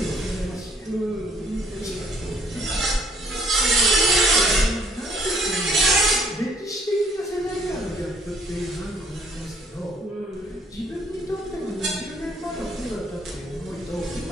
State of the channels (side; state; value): both; normal; correlation 0.62